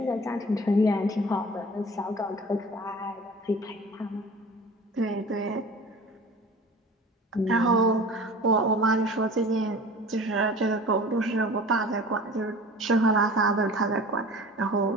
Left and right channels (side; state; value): both; normal; correlation 0.41